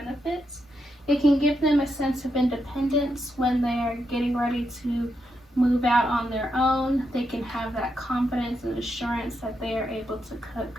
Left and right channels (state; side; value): normal; both; correlation 0.82